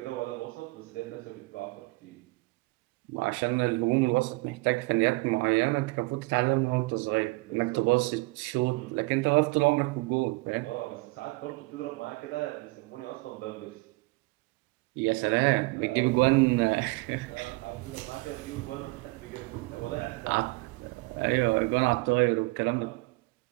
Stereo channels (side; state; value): left; quieter; 24.5 dB